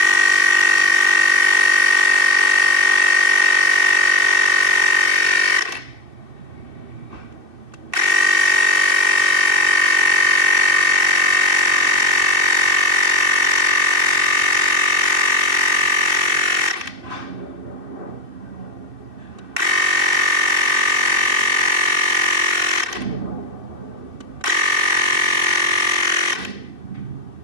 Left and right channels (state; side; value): late; left; 2.6 ms